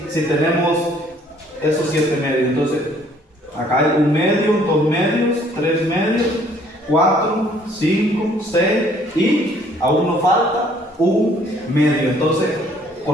tenemos esos 7 medios. Entonces, acá hay 1 medio, 2 medios, 3 medios, 4, 5, 6 y aún nos falta 1 medio. Entonces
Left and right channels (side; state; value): both; normal; correlation 0.61